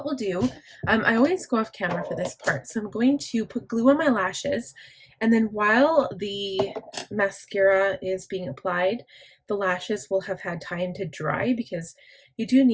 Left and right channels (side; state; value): both; identical; correlation 1.00